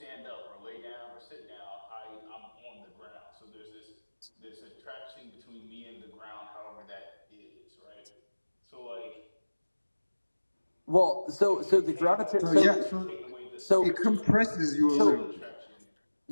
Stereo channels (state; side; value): inverted; both; correlation -1.00